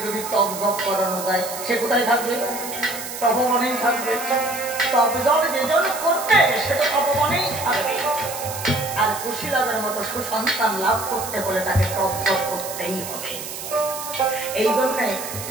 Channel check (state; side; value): noise; right; hiss, 9 dB below the sound